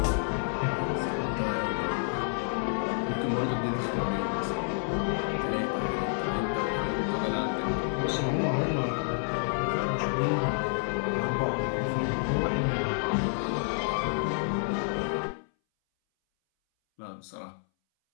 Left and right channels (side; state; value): right; silent; 58 dB below the other